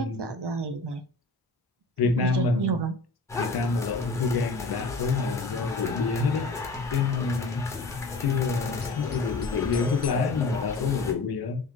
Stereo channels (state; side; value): quieter; right; 3.3 dB